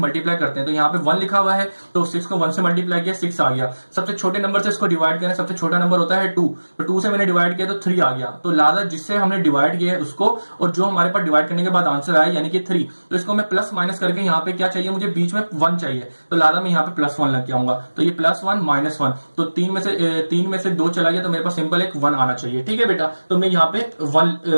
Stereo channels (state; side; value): inverted; both; correlation -1.00